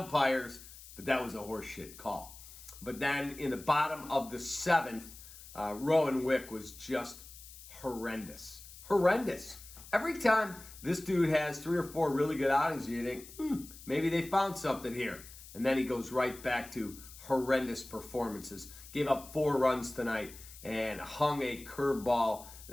but that was a horseshit call. But then in the bottom of the seventh, Rowan Wick was just horrendous. Horrendous. Every time this dude has 3 or 4 really good outings, you think, maybe they found something here. And then he goes right back to horrendous performances. Gave up 4 runs tonight and hung a curveball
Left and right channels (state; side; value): noise; left; hiss, 17 dB below the sound